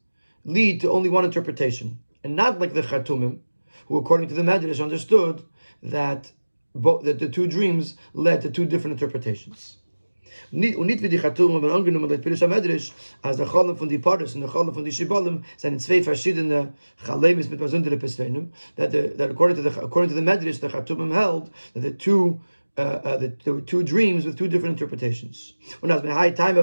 lead to only 1 interpretation, and not like the Chartumim, who, according to the Medrash, understood that the 2 dreams led to 2 different interpretations. Und nicht wie die Chatumen, wenn angenommen wird, Pirush HaMedrash, als der Chalem von die Paris und der Chalem von die Shibalim sind zwei verschiedene Chalemis mit besonderen Pesrenim, that according to the Medrash, the Chatumim held that there were two dreams with two different interpretations. And that's why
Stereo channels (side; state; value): both; inverted; correlation -1.00